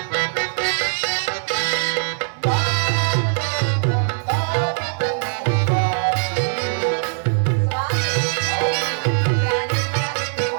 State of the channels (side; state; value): left; silent; 63 dB below the other